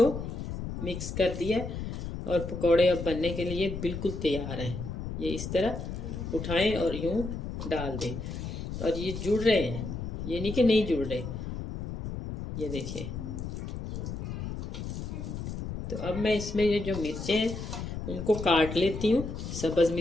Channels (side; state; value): left; noise; rumble, 6 dB below the sound